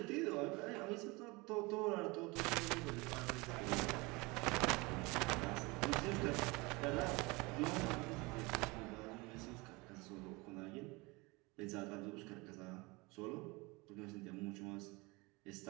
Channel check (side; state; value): left; quieter; 25.0 dB